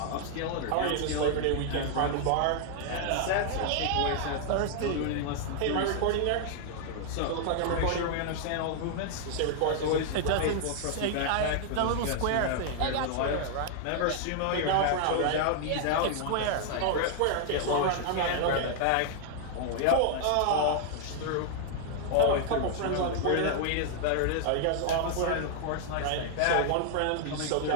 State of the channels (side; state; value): both; different; correlation 0.00